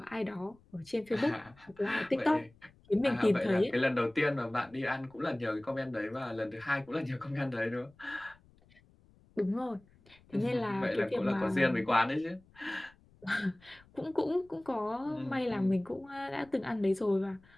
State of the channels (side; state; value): left; noise; rumble, 28 dB below the sound